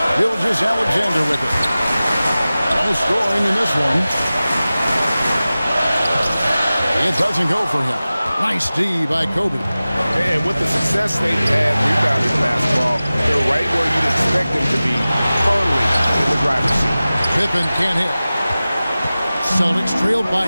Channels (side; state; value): both; inverted; correlation -0.97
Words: Gilgeous-Alexander with it. No scoring in this one. It doesn't go for him. Nice D by Kobe. And with the success they've had rebounding basketball, they're right where you'd expect them to be, firmly in the driver's seat. Pippen can't hit. Celtics trailed